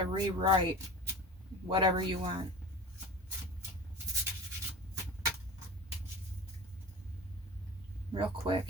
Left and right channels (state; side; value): normal; both; correlation 0.35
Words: rewrite whatever you want. Real quick,